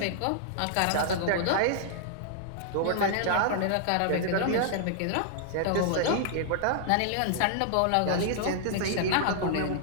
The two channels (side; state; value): both; different; correlation -0.01